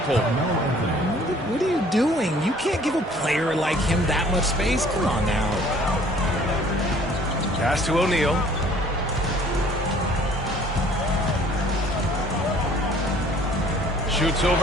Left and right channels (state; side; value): normal; both; correlation 0.55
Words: What are you doing? You can't give a player like him that much space. Come on now. Pass to O'Neal. Shoots